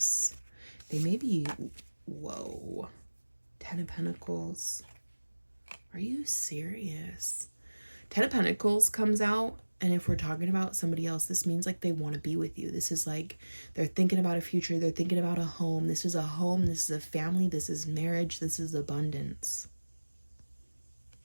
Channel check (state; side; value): inverted; both; correlation -1.00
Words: They may be, whoa. Ten of Pentacles. Are you serious? Ten of Pentacles comes out, and if we're talking about somebody else, this means like they want to be with you. This is like they're thinking about a future. They're thinking about a home. This is a home. This is a family. This is marriage. This is abundance.